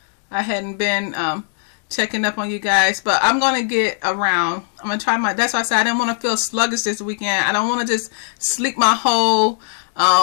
I hadn't been checking up on you guys, but I'm gonna get around. I'm gonna try that's why I said I didn't want to feel sluggish this weekend. I don't want to just sleep my whole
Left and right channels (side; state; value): right; silent; digital silence